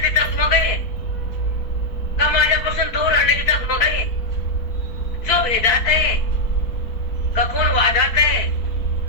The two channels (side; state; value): right; late; 4.5 ms